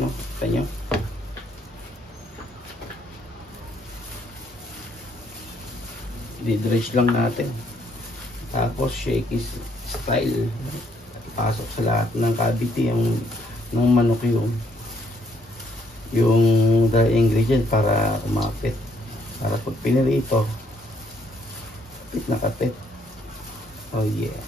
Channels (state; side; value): normal; both; correlation 0.69